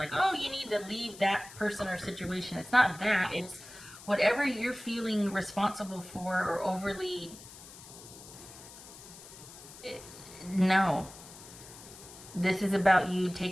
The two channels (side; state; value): left; noise; hiss, 17 dB below the sound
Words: oh, you need to leave that person or situation. It's not that. It's whatever you're feeling responsible for or overly. No. This is about you